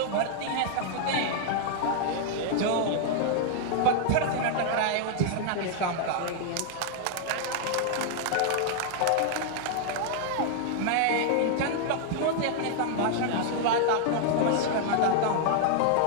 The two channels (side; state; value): both; different; correlation 0.00